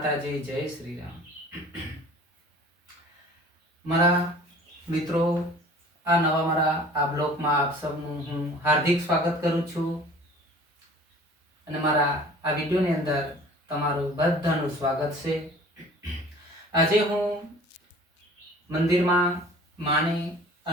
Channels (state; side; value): normal; both; correlation 0.47